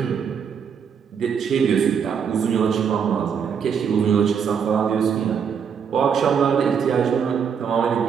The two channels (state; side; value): quieter; left; 7.0 dB